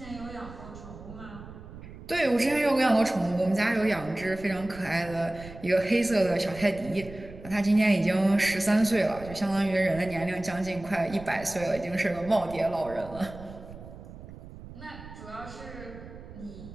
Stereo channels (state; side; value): noise; right; rumble, 15 dB below the sound